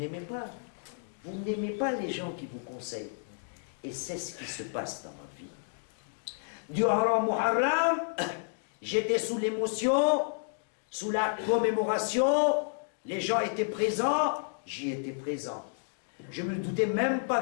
pas. Vous n'aimez pas les gens qui vous conseillent. Et c'est ce qui se passe dans ma vie. Durant Muharram, j'étais sous l'émotion, sous la commémoration, les gens étaient présents, j'y étais présent. Je ne me doutais même pas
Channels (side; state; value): right; silent; digital silence